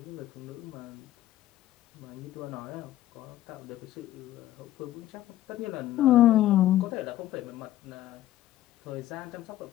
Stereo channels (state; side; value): quieter; right; 13.8 dB